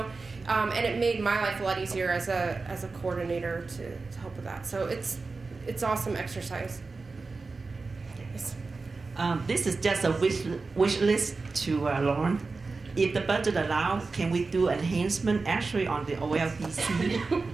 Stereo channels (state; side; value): quieter; left; 4.0 dB